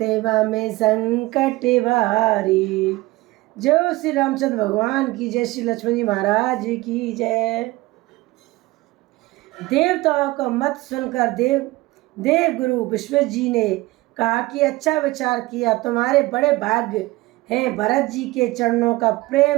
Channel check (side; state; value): left; quieter; 20.0 dB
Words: में संकट भारी। जय श्री रामचंद्र भगवान की जय, श्री लक्ष्मण जी महाराज की जय। देवताओं का मत सुनकर देव गुरु विश्वजित जी ने कहा कि अच्छा विचार किया, तुम्हारे बड़े भाग्य हैं। भरत जी के चरणों का